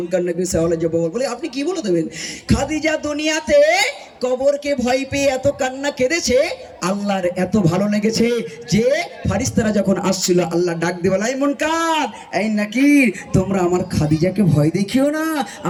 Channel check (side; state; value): both; identical; correlation 1.00